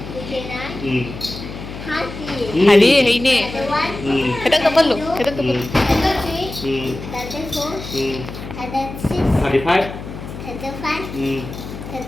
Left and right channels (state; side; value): noise; left; hum, 11 dB below the sound